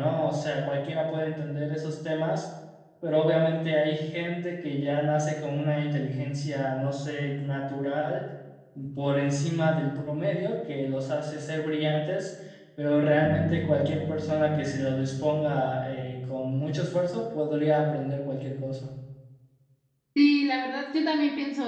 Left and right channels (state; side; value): identical; both; correlation 1.00